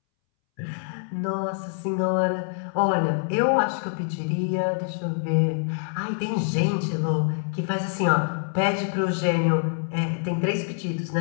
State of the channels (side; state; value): right; silent; 61 dB below the other